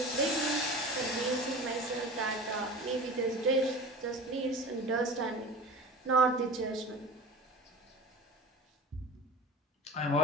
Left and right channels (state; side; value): normal; both; correlation 0.36